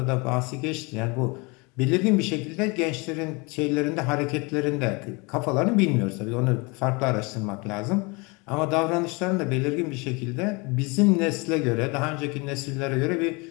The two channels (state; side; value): quieter; right; 28.0 dB